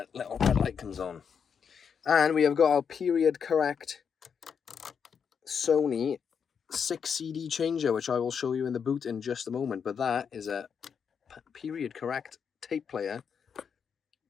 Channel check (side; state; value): right; quieter; 6.9 dB